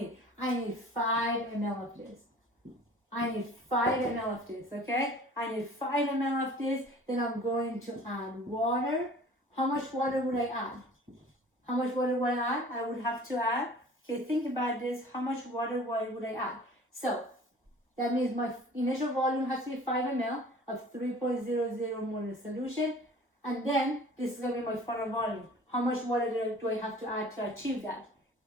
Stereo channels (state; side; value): normal; both; correlation 0.46